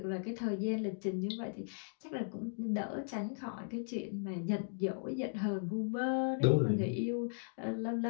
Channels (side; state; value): right; silent; digital silence